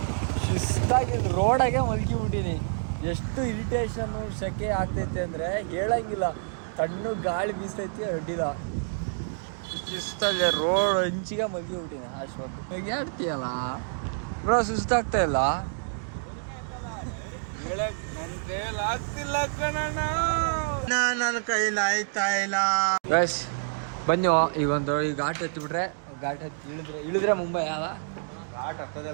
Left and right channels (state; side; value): silent; left; digital silence